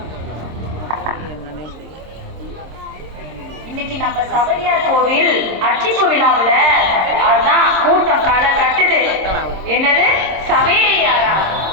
இன்னைக்கு நம்ம சபரியார் கோவில் அர்ச்சிப்பு விழாவில் அதுதான் கூட்டம் களை கட்டுது. என்னது சபரியாரா?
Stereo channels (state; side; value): late; left; 26 ms